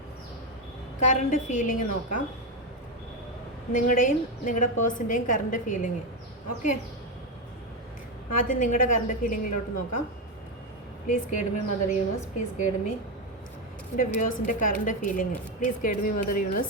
കറണ്ട് ഫീലിംഗ് നോക്കാം. നിങ്ങളുടെയും നിങ്ങളുടെ പേഴ്സൻ്റെയും കറണ്ട് ഫീലിംഗ്. ഓക്കെ, ആദ്യം നിങ്ങളുടെ കറണ്ട് ഫീലിങ്ങിലോട്ട് നോക്കാം. Please guide me mother universe, please guide me എൻ്റെ വ്യൂവേഴ്സിൻ്റെ current feeling. Please guide me mother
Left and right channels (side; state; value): both; normal; correlation 0.10